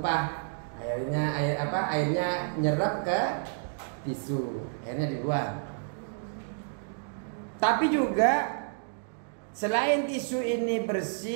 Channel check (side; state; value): left; silent; digital silence